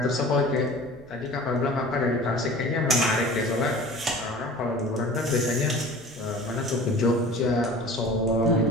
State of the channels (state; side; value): normal; both; correlation 0.42